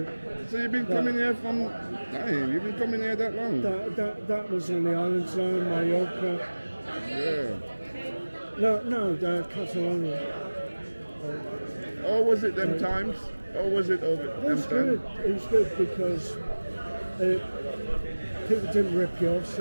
you've been coming here from... You've been coming here that long? That was in the island zone, Mallorca. Yeah. No, Catalonia. Or was it them times? Or was it over It was them good. times? It was good because people didn't rip you off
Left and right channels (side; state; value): both; inverted; correlation -1.00